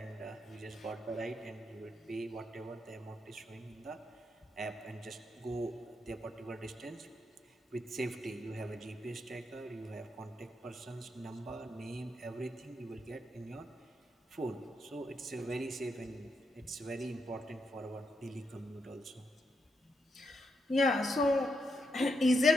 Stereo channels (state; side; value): normal; both; correlation 0.81